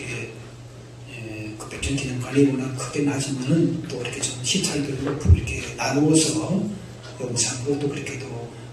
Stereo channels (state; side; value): identical; both; correlation 1.00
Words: 그 100주년 기념관이 워낙 크게 나지만은 또 이렇게 좀 시찰들로 이렇게 나누어서 영상으로 또 그렇게도